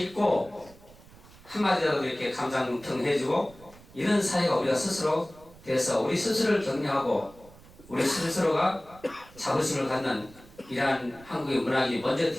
한마디라도 이렇게 감상평 해주고, 이런 사회가 우리가 스스로 돼서 우리 스스로를 격려하고 우리 스스로가 자부심을 갖는 이러한 한국의 문학이 먼저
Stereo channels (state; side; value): noise; right; rumble, 23 dB below the sound